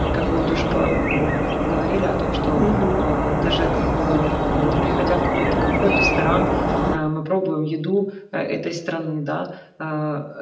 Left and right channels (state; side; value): identical; both; correlation 1.00